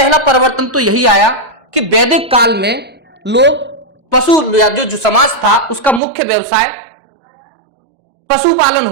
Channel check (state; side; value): drops out; left; at 6.0 s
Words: परिवर्तन तो यही आया कि वैदिक काल में लोग पशु या जो समाज था उसका मुख्य व्यवसाय पशुपालन